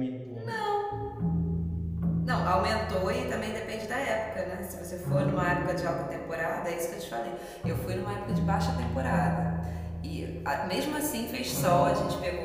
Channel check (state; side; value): identical; both; correlation 1.00